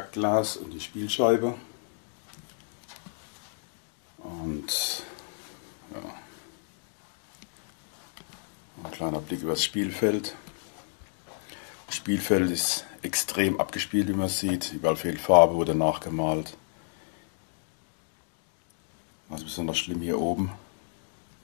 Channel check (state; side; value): silent; right; 57 dB below the other